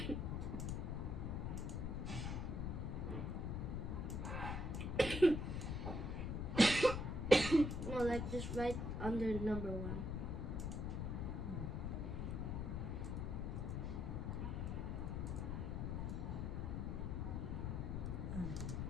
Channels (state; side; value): noise; left; rumble, 1 dB below the sound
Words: No, like just right under number 1.